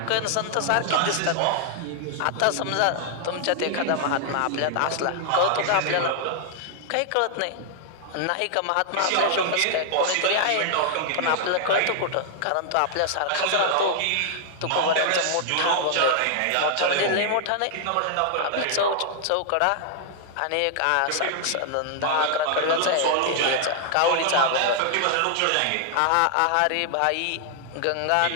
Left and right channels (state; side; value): different; both; correlation 0.00